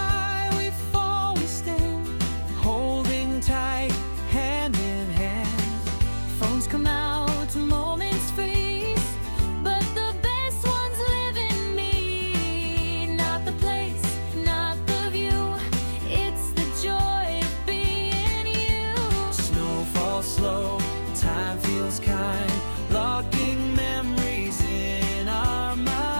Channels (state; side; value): inverted; both; correlation -1.00